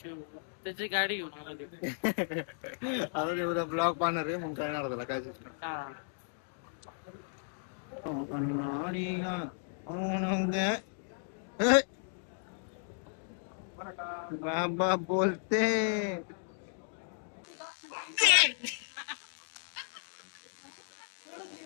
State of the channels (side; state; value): right; silent; digital silence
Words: त्याची गाडी घेऊन आलो ते. आता ते उद्या ब्लॉग पाहणार आहे मग कळणार त्याला काय सिस्टम. हा. बाबा बोलते